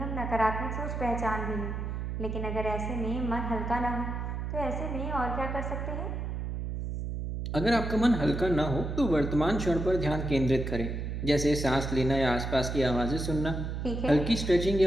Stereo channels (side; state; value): right; noise; hum, 4 dB below the sound